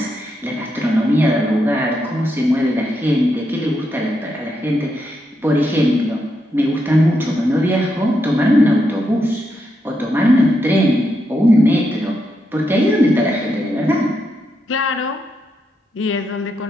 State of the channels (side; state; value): both; normal; correlation 0.82